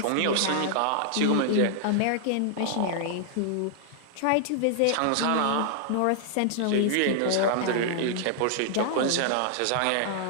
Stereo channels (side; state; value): both; different; correlation -0.01